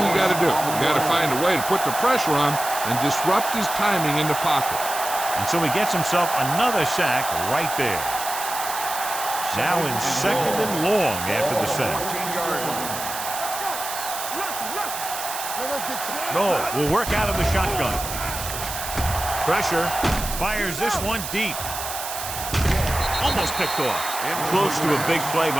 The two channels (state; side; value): noise; right; hiss, 7 dB below the sound